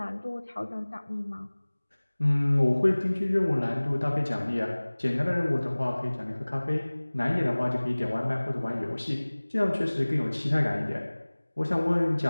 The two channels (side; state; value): both; inverted; correlation -1.00